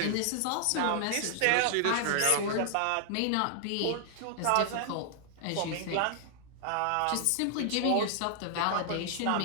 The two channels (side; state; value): both; different; correlation 0.00